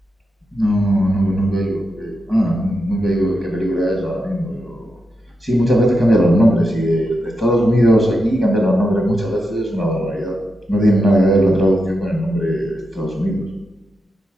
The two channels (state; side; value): normal; both; correlation 0.86